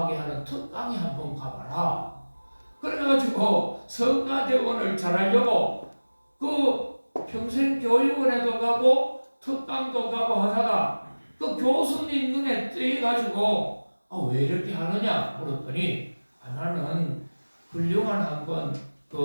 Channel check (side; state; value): both; inverted; correlation -1.00